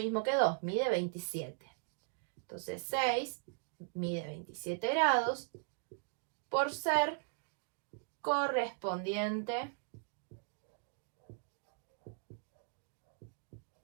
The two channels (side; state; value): left; silent; digital silence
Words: que 2, mide 27. Entonces 6 mide 27 grados por ser correspondiente